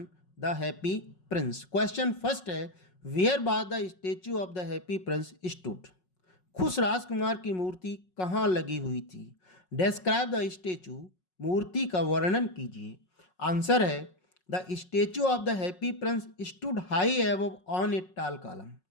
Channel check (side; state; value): right; late; 5.5 ms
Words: the happy Prince. Question first है, where by the statue of the happy Prince stood. खुश राजकुमार की मूर्ति कहाँ लगी हुई थी। डिस्क्राइब द स्टेच्यू, मूर्ति का वर्णन कीजिए। आंसर है, the statue of the happy Prince stood high above on a tall column.